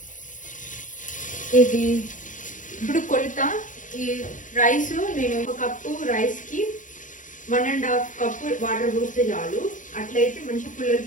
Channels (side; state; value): right; late; 0.37 ms